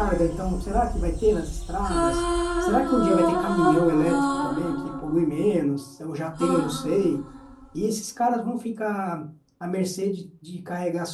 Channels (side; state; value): both; identical; correlation 1.00